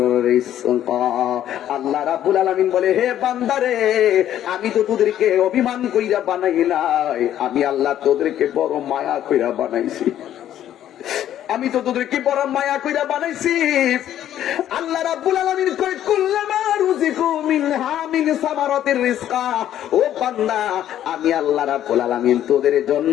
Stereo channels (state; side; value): quieter; right; 11.4 dB